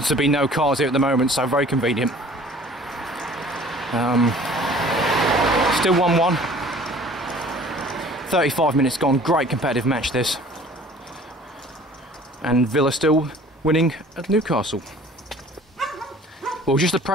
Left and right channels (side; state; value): both; normal; correlation 0.50